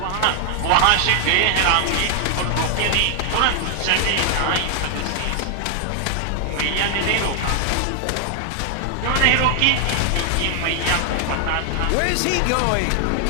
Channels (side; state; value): both; different; correlation 0.00